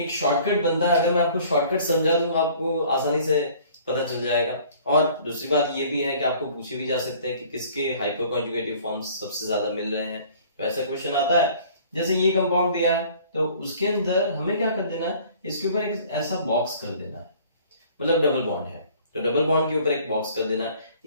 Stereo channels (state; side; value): inverted; both; correlation -0.52